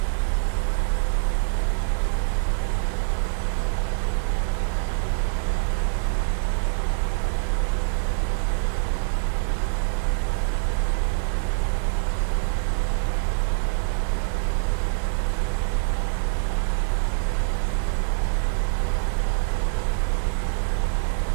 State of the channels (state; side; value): silent; left; digital silence